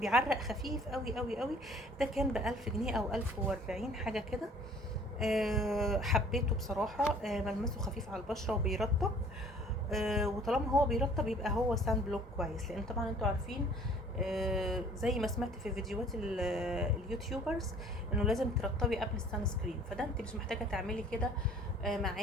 خفيف قوي قوي قوي. ده كان ب1000 جنيه او 1040 حاجه كده. حبيته بصراحه. ملمسه خفيف على البشره وبيرطب. وطالما هو بيرطب يبقى هو سان بلوك كويس، لان طبعا انتوا عارفين زي ما سمعت في فيديوهات اليوتيوبرز انه لازم ترطبي قبل السان سكرين، فده انت مش محتاجه تعملي كده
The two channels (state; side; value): normal; both; correlation 0.54